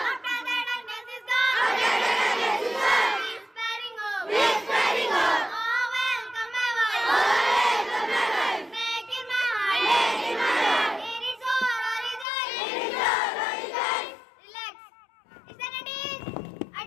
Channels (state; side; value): drops out; right; at 12.2 s